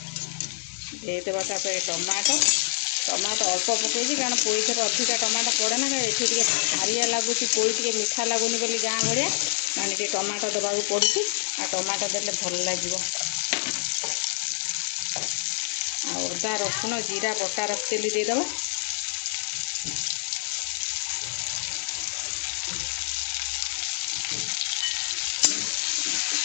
देदेबा टमाटो टमाटो अल्प पकई कारण पोई थर अधिका टमाटो पड़े ना ये हारिया लगुच पोई टे मीठा लगुनि बोली गाँ भाया मैंने ये टमाटो देवाक पड़ू आ टमाटो देले भल लगे। अदा रसुण जीरा बटा रखिदेली देदेबा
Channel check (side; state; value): right; silent; 60 dB below the other